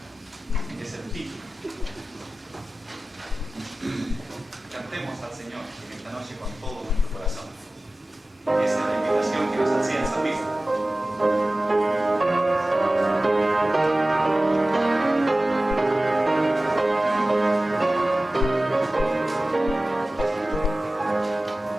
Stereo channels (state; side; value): normal; both; correlation 0.96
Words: es el título. Cantemos al Señor en esta noche con todo nuestro corazón. Esa es la invitación que nos hacía el salmista.